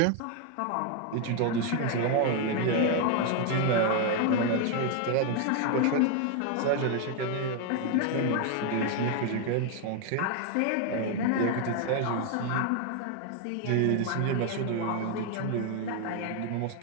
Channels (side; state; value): both; different; correlation 0.01